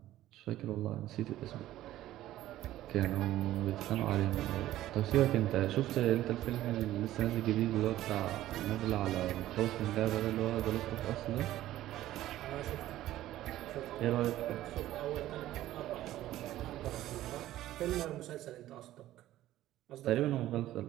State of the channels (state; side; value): quieter; left; 14.2 dB